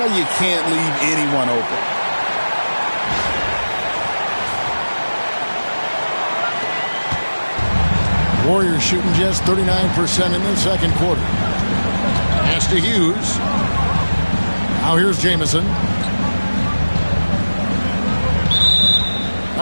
you can't leave anyone open. Warriors shooting just 39% in the second quarter. Pass to Hughes. Now here's Jamison.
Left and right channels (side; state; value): both; inverted; correlation -1.00